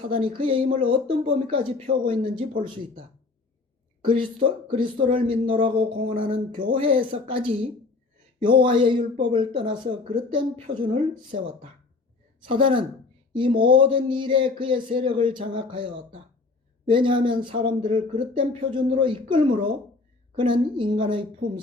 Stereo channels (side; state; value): right; quieter; 3.8 dB